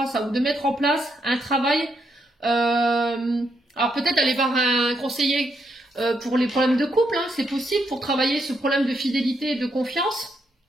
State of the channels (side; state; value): both; normal; correlation 0.78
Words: ça, ou de mettre en place un travail. Alors peut-être aller voir un conseiller pour les problèmes de couple, hein, c'est possible, pour travailler ce problème de fidélité et de confiance.